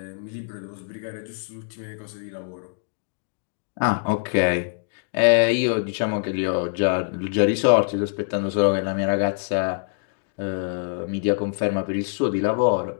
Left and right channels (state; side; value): silent; right; digital silence